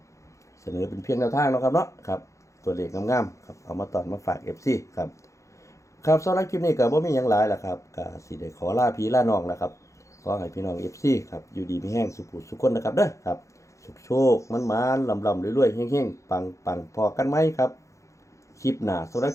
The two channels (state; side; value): late; right; 0.15 ms